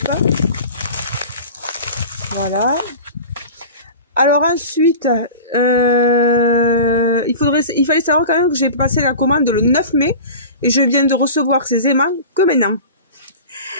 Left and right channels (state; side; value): inverted; both; correlation -0.35